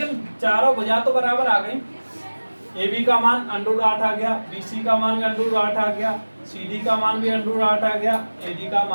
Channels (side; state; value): both; inverted; correlation -1.00